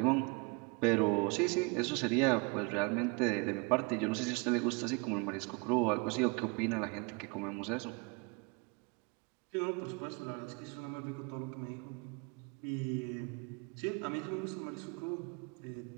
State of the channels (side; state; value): left; quieter; 29.9 dB